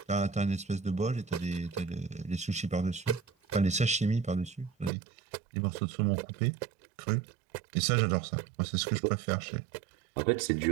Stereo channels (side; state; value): left; drops out; at 4.9 s